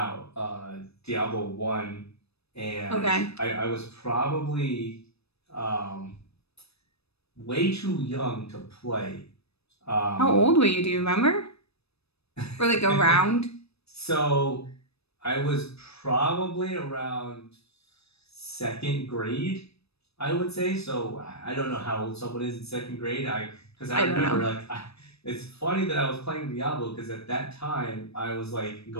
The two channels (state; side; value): late; right; 0.78 ms